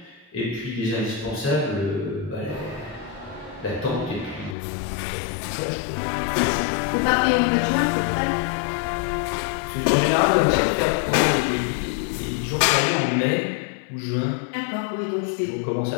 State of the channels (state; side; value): drops out; right; at 4.5 s